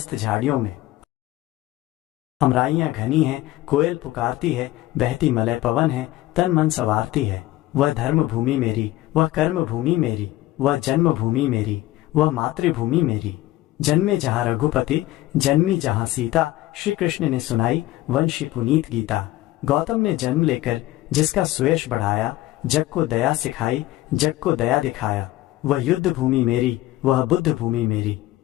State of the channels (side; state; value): right; quieter; 16.3 dB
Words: झाड़ियों में। अमराइयां घनी हैं, कोयल पुकारती है, बहती मलय पवन है, तन मन संवारती है। वह धर्म भूमि मेरी, वह कर्म भूमि मेरी, वह जन्मभूमि मेरी, वह मातृभूमि मेरी। जन्मे जहाँ रघुपति, जन्मी जहाँ सीता, श्री कृष्ण ने सुनाई वंशी पुनीत गीता। गौतम ने जन्म लेकर जिसका सुयश बढ़ाया, जग को दया सिखाई, जग को दया दिखाया। वह युद्ध भूमि मेरी, वह बुद्ध भूमि मेरी,